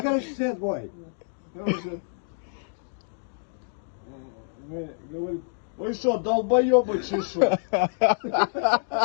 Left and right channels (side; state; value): right; silent; digital silence